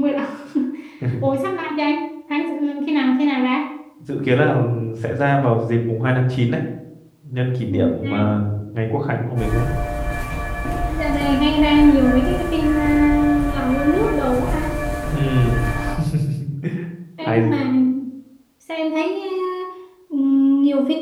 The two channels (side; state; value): both; identical; correlation 1.00